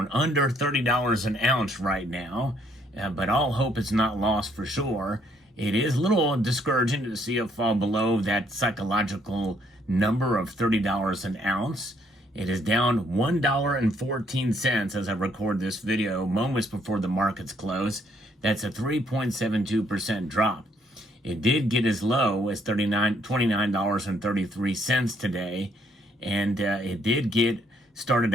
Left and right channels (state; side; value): normal; both; correlation 0.68